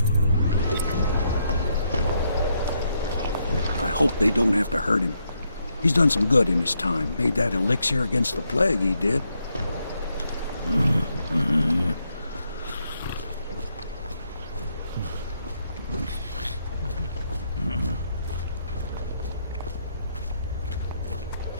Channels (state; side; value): inverted; both; correlation -0.78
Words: I hope they don't have to hurt him. He's done some good in his time. Made that elixir against the plague, he did.